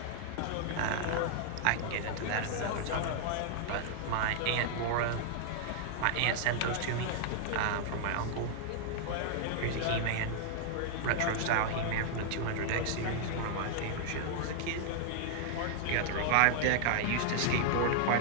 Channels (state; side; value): different; both; correlation -0.01